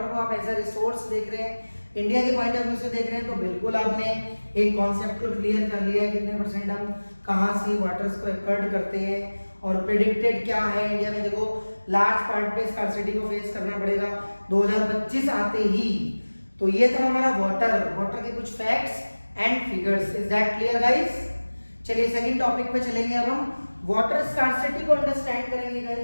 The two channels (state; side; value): inverted; both; correlation -1.00